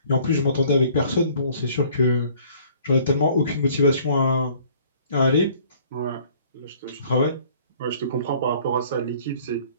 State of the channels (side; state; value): both; inverted; correlation -0.55